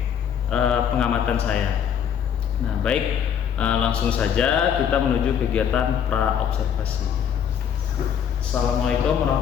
pengamatan saya. Nah, baik, langsung saja kita menuju kegiatan pra observasi. Assalamualaikum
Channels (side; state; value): right; quieter; 8.4 dB